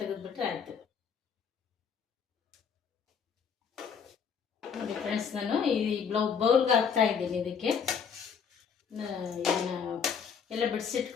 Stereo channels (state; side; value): quieter; right; 6.7 dB